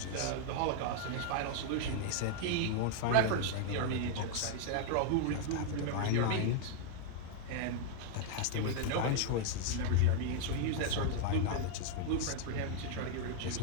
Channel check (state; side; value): different; both; correlation 0.00